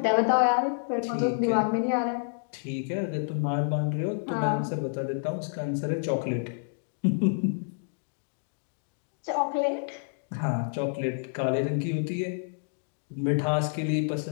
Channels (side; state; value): right; silent; digital silence